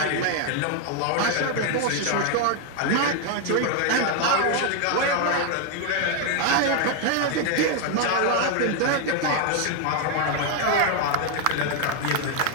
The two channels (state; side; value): different; both; correlation 0.01